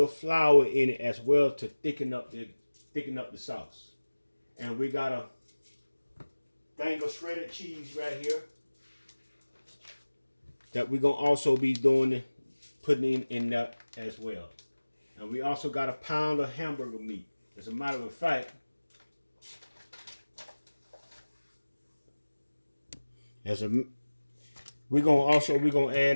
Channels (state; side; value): inverted; both; correlation -1.00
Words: flour in it as well to thicken up the sauce. And we got a thing of shredded cheese right here that we're gonna also be putting in that as well. And we also got a pound of hamburger meat. As a matter of fact, we're gonna